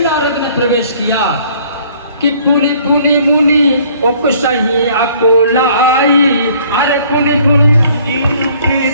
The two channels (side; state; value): both; inverted; correlation -0.58